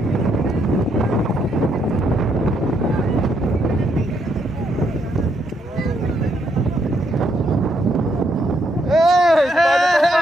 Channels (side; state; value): both; normal; correlation 0.75